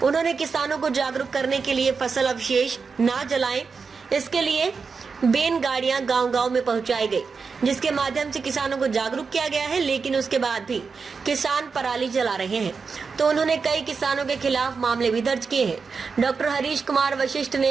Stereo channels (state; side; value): quieter; left; 5.1 dB